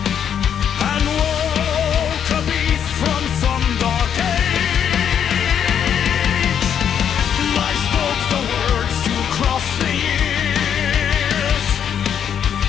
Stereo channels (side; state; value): right; quieter; 8.5 dB